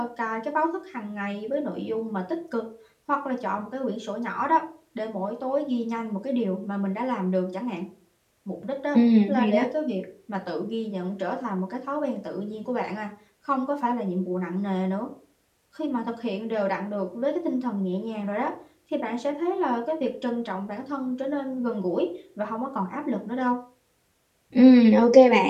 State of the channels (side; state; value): both; identical; correlation 1.00